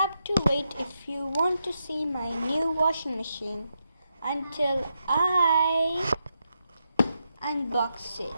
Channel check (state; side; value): inverted; both; correlation -0.84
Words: to wait if you want to see my new washing machine until I unbox it.